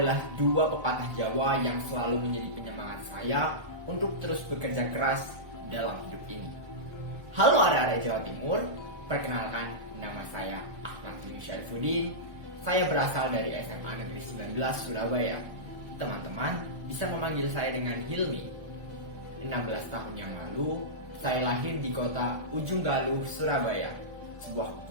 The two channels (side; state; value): left; late; 1.4 ms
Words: dua pepatah Jawa yang selalu menjadi penyemangat saya untuk terus bekerja keras dalam hidup ini. Halo arek-arek Jawa Timur, perkenalkan nama saya Ahmad Yunus Syaifuddin. Saya berasal dari SMA Negeri 19 Surabaya. Teman-teman bisa memanggil saya dengan Hilmi. 16 tahun yang lalu, saya lahir di kota Ujung Galuh, Surabaya. Sebuah